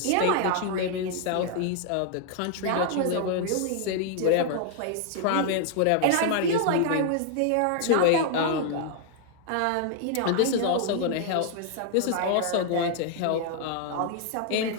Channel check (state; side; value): different; both; correlation 0.00